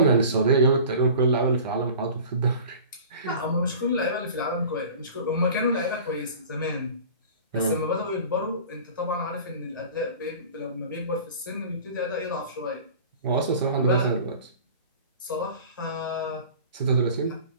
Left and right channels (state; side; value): inverted; both; correlation -0.41